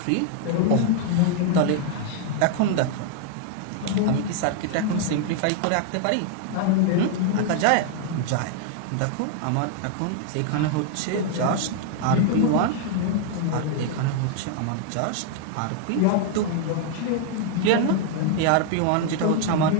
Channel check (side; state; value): both; different; correlation 0.00